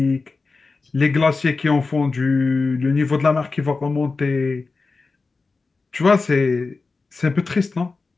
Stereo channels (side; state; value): right; quieter; 4.0 dB